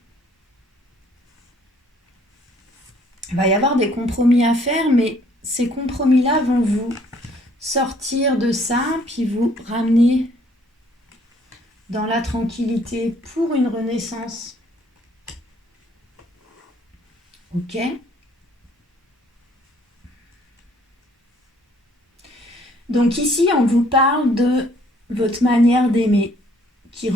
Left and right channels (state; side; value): normal; both; correlation 0.62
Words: Il va y avoir des compromis à faire, mais ces compromis-là vont vous sortir de ça, puis vous ramener dans la tranquillité pour une renaissance. Ok ? Donc ici, on vous parle de votre manière d'aimer qui